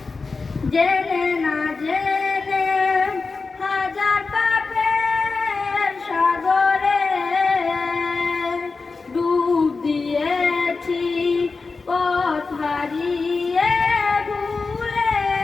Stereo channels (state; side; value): quieter; right; 4.2 dB